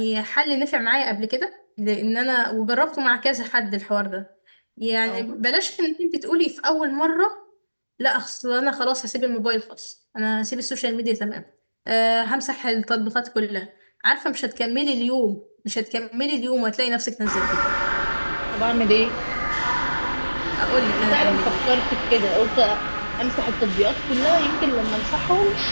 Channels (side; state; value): both; inverted; correlation -1.00